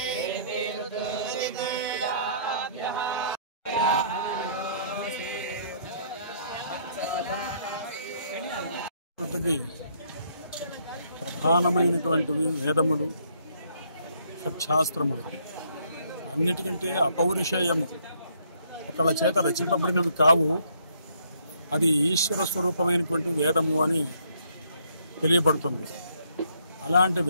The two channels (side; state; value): both; inverted; correlation -0.67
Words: జాతికి ప్రధానమైనటువంటివి వేదములు, షట్శాస్త్రములు. అన్నిటికంటే అపౌరుషేయము, ఒకళ్ళ చేత రచింపబడినవి కావు, అది ఈశ్వర స్వరూపమైనటువంటి వేదము అని తెలియబడుతుంది. అలాంటి